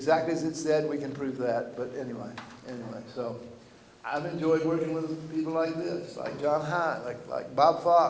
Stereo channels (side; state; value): both; identical; correlation 1.00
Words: as it said. We can prove that. But anyway, so I've enjoyed working with people like this, like John High, like Bob